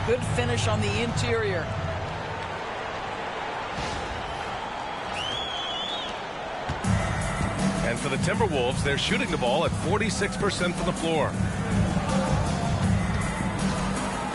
Good finish on the interior. And for the Timberwolves, they're shooting the ball at 46% from the floor.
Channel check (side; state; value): both; identical; correlation 1.00